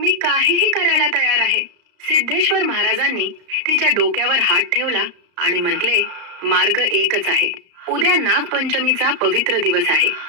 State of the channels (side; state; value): left; late; 34 ms